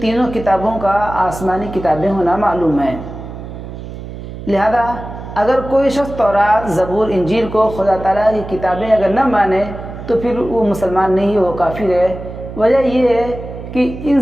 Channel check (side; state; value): right; noise; hum, 11 dB below the sound